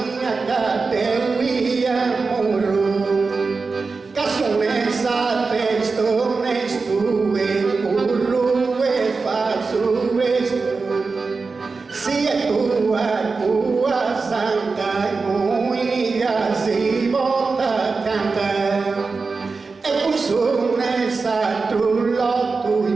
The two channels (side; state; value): left; quieter; 4.3 dB